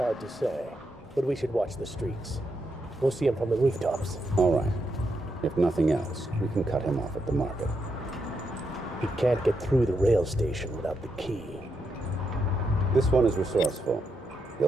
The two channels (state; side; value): normal; both; correlation 0.82